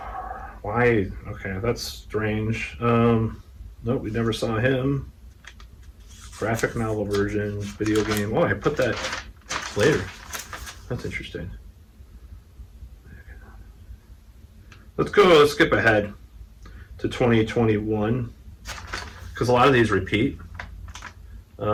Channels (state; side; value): identical; both; correlation 1.00